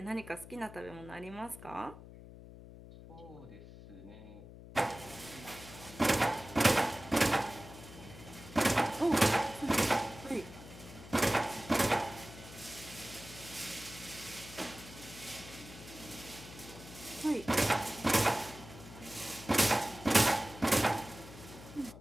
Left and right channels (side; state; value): left; noise; hum, 16 dB below the sound